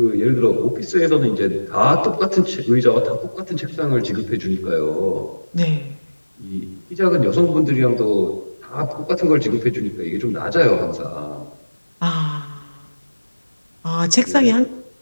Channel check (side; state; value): both; inverted; correlation -1.00